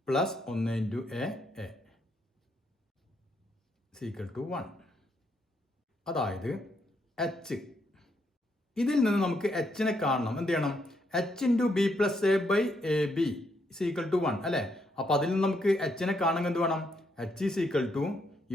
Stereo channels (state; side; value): normal; both; correlation 0.76